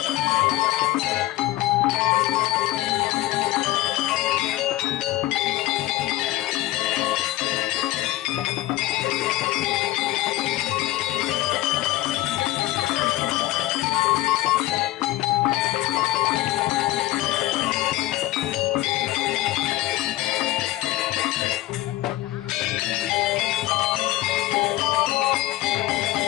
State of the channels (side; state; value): right; quieter; 16.5 dB